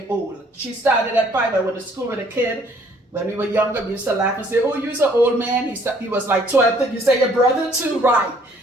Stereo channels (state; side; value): normal; both; correlation 0.61